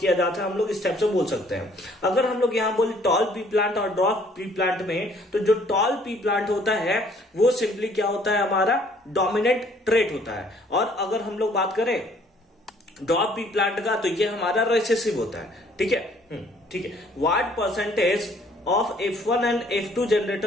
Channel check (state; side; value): normal; both; correlation 0.60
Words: किया जाता है, हम लोग इस टाइप से बोल सकते हैं। अगर हम लोग यहाँ बोले टॉल पी प्लांट और ड्रॉप पी प्लांट में, तो जो टॉल पी प्लांट होता है वो सिंपली क्या होता है? हमारा डोमिनेंट ट्रेट होता है। और अगर हम लोग बात करें ड्रॉप पी प्लांट का, तो ये हमारा रिसेसिव होता है। ठीक है। What percentage of F1 and F2